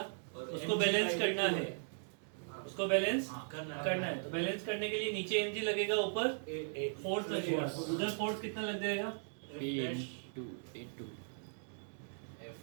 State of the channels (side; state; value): left; silent; digital silence